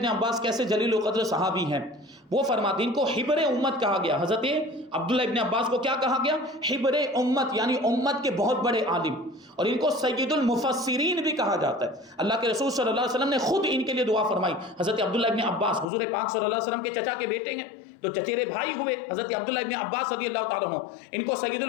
عباس کیسے جلیل القدر صحابی ہیں، وہ فرماتے ہیں ان کو حبر امت کہا گیا۔ حضرت عبداللہ ابن عباس کو کیا کہا گیا؟ حبر امت، یعنی امت کے بہت بڑے عالم، اور ان کو سید المفسرین بھی کہا جاتا ہے۔ اللہ کے رسول صلی اللہ علیہ وسلم نے خود ان کے لیے دعا فرمائی۔ حضرت عبداللہ ابن عباس حضور پاک صلی اللہ علیہ وسلم کے چچا کے بیٹے ہیں، تو چچیرے بھائی ہوئے حضرت عبداللہ ابن عباس رضی اللہ تعالیٰ عنہ، ان کو سید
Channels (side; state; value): right; drops out; at 15.9 s